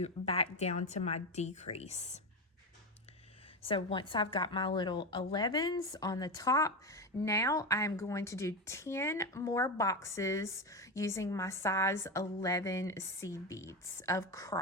back down to my decrease. So once I've got my little 11s on the top, now I'm going to do 10 more boxes using my size 11 seed beads of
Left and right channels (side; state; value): both; normal; correlation 0.16